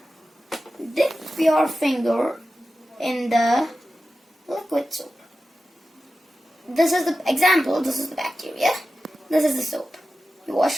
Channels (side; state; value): both; normal; correlation 0.93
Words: dip your finger in the liquid soap. This is the example. This is the bacteria. This is the soap. You